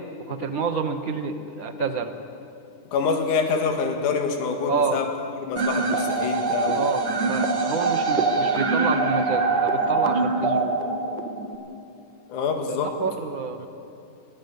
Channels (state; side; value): late; right; 9.9 ms